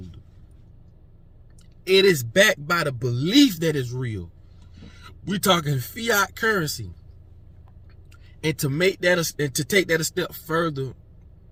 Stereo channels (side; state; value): both; identical; correlation 1.00